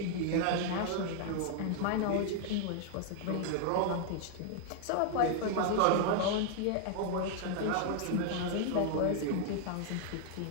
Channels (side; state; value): both; different; correlation 0.00